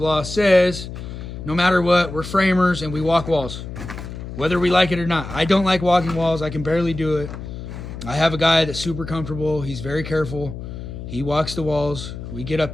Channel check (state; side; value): noise; left; hum, 10 dB below the sound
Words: says, no matter what, we're framers and we walk walls, whether we like it or not. I don't like walking walls. I can barely do it. I have a guy that's super comfortable. He's very careful. He walks the walls. We get up